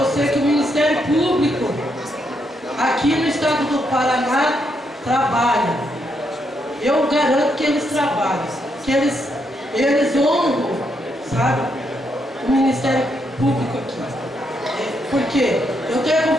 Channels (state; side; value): normal; both; correlation 0.78